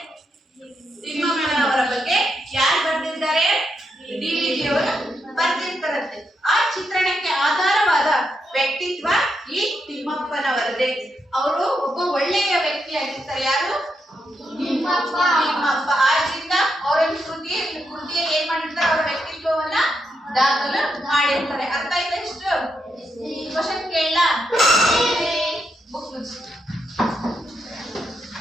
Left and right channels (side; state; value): both; normal; correlation 0.82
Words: ತಿಮ್ಮಪ್ಪನವರ ಬಗ್ಗೆ ಯಾರು ಬರೆದಿದ್ದಾರೆ? ಡಿವಿಜಿ ಅವರು ಬರೆದಿರ್ತಾರಂತೆ. ಆ ಚಿತ್ರಣಕ್ಕೆ ಆಧಾರವಾದ ವ್ಯಕ್ತಿತ್ವ ಈ ತಿಮ್ಮಪ್ಪನವರದೇ. ಅವರು ಒಬ್ಬ ಒಳ್ಳೆಯ ವ್ಯಕ್ತಿಯಾಗಿರ್ತಾರೆ. ಯಾರು? ತಿಮ್ಮಪ್ಪ. ಆದ್ರಿಂದ ಅವರ ಕೃತಿಯ ಏನ್ ಮಾಡಿರ್ತಾರೆ? ಅವರ ವ್ಯಕ್ತಿತ್ವವನ್ನ ದಾಖಲು ಮಾಡಿರ್ತಾರೆ. ಅರ್ಥ ಆಯ್ತಾ? ಇಷ್ಟು ಕ್ವಶನ್ ಕೇಳಲ್ಲ? ಬುಕ್